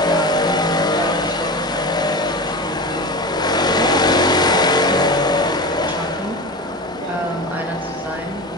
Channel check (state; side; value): normal; both; correlation 0.27